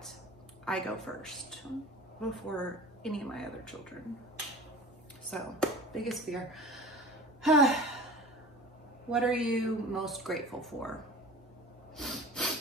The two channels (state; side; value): normal; both; correlation 0.39